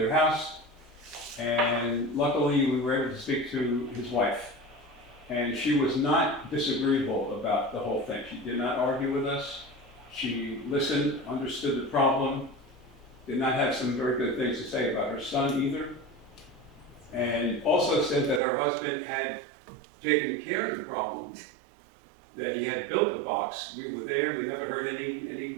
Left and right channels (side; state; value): left; drops out; at 18.4 s